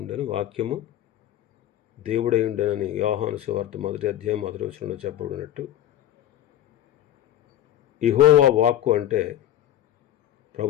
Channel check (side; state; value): right; quieter; 12.4 dB